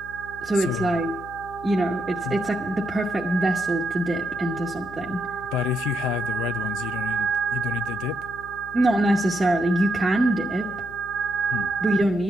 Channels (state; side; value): noise; left; hum, 17 dB below the sound